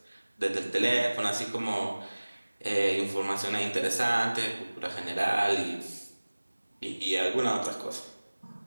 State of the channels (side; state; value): both; inverted; correlation -1.00